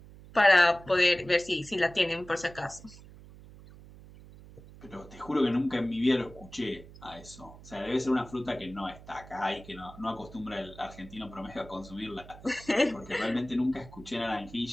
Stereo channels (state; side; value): noise; right; hum, 19 dB below the sound